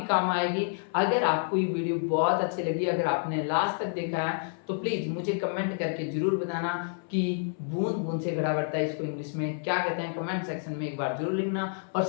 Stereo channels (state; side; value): silent; right; 59 dB below the other